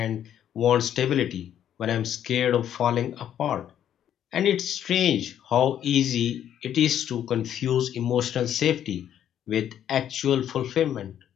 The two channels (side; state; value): right; quieter; 10.2 dB